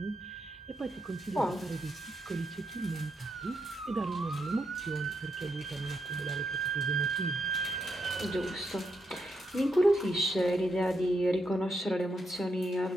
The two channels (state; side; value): normal; both; correlation 0.81